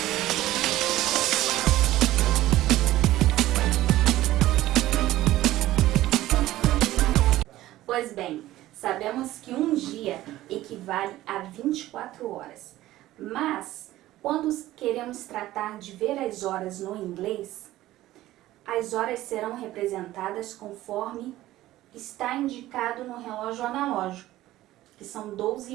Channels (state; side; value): quieter; left; 15.5 dB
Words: Pois bem, sabemos que um dia equivale a 24 horas, mas quando queremos tratar de ver as horas no inglês, as horas serão representadas conforme está indicado no relógio analógico, que são